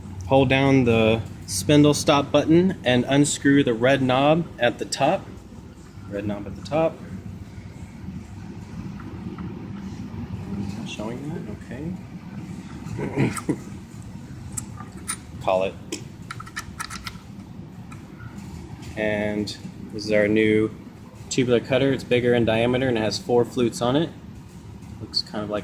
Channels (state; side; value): identical; both; correlation 1.00